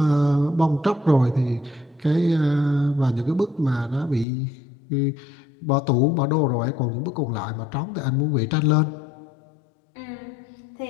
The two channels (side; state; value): right; drops out; at 4.2 s